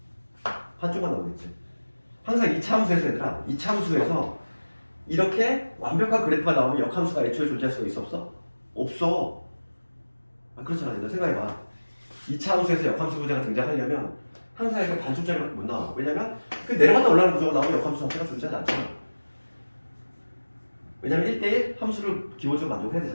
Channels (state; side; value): inverted; both; correlation -1.00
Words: 반쪽만 나오겠지. 항상 이참수에서 얘들아 이참수에서 이렇게 완벽한 그래프가 나오면 역함수가 애초에 존재할 수가 있어 없어? 없어. 그렇잖아. 얘들 생각해봐. 이참수에서 역함수 구조가 등장하려면 항상 이렇게 반쪽짜리밖에 못 나와. 왜냐면 그 내려갔다 올라가는 구조가 나오면 역함수 자체가 존재하지 않잖아. 왜냐면 1대1 함수를 기본적으로 만족해야